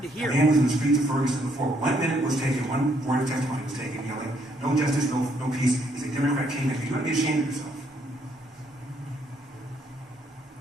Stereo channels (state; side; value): normal; both; correlation 0.70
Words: to hear. A man was in the streets of Ferguson before 1 minute was taken, one word of testimony was taken, yelling, no justice, no peace. He's a Democrat kingmaker. You ought to be ashamed of yourself.